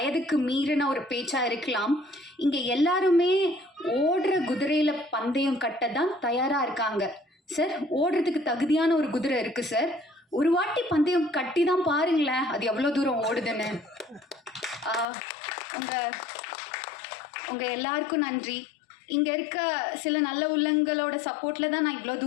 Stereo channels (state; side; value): drops out; right; at 15.1 s